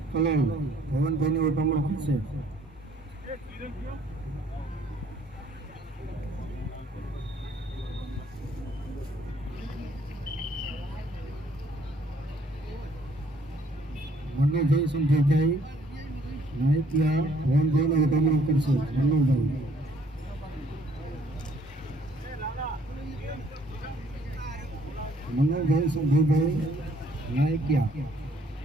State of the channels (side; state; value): both; normal; correlation 0.62